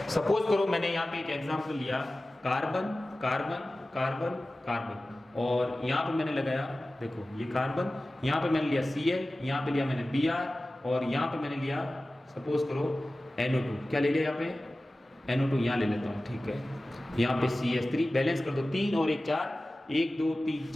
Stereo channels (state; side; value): normal; both; correlation 0.96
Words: सपोज करो मैंने यहाँ पे एक एग्जांपल लिया कार्बन कार्बन कार्बन कार्बन, और यहाँ पे मैंने लगाया, देखो ये कार्बन, यहाँ पे मैंने लिया Cl, यहाँ पे लिया मैंने Br, और यहाँ पे मैंने लिया सपोज करो NO2। क्या ले लिया यहाँ पे? NO2 यहाँ ले लेता हूँ, ठीक है। यहाँ पे CH3, बैलेंस कर दो, 3 और 1 4, 1 2 3